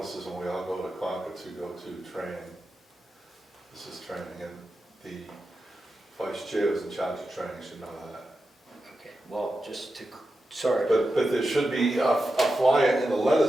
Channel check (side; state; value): both; normal; correlation 0.90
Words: when we all go to Concord to go to training. This is training, and the vice chair is in charge of training, should know that. Okay, well, just to, sorry. But there should be a flyer in the